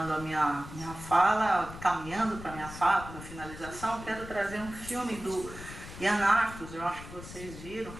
a minha fala, caminhando para a minha fala, para a finalização, quero trazer um filme do Yann Arthus, eu acho que vocês viram.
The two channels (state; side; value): noise; left; rumble, 13 dB below the sound